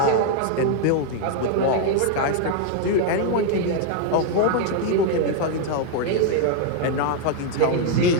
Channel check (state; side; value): different; both; correlation 0.00